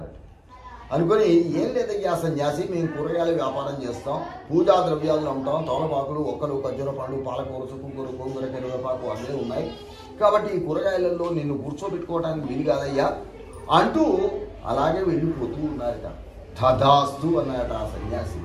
అనుకుని, ఏం లేదయ్యా సన్యాసి, మేము కూరగాయల వ్యాపారం చేస్తాం, పూజా ద్రవ్యాలు అమ్ముతాం, తోలపాకులు, ఒక్కలు, ఖర్జూర పండు, పాలకూర, చుక్కకూర, గోంగూర, కరివేపాకు అన్నీ ఉన్నాయి, కాబట్టి ఈ కూరగాయలలో నిన్ను కూర్చోబెట్టుకోవడానికి వీలు కాదయ్యా అంటూ అలాగే వెళ్ళిపోతూ ఉన్నారట. తథాస్తు అన్నారట ఆ సన్యాసి.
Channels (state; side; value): identical; both; correlation 1.00